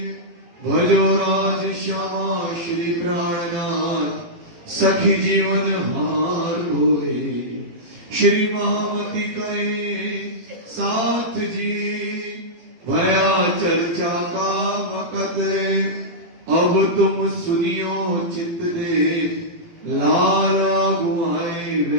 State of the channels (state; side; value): late; left; 18 ms